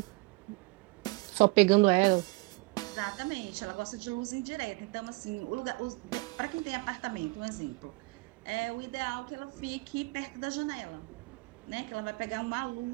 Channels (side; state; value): left; quieter; 26.2 dB